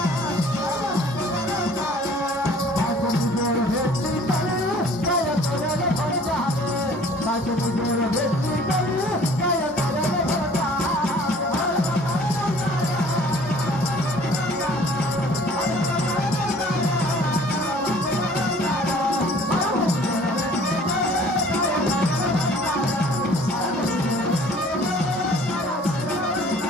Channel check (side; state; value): both; normal; correlation 0.52